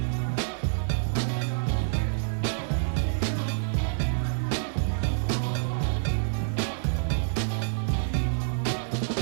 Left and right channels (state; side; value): silent; left; 55 dB below the other